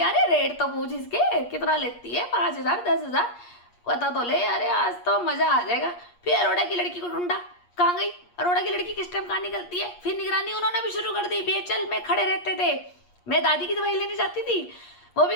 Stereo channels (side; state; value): right; late; 8.5 ms